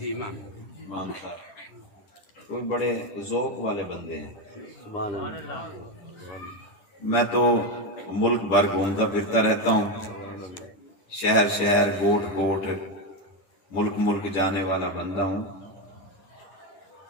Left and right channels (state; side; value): late; right; 11 ms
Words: امام صاحب تو بڑے ذوق والے بندے ہیں. میں تو ملک بھر گھومتا پھرتا رہتا ہوں، شہر شہر گوٹ گوٹ ملک ملک جانے والا بندہ ہوں.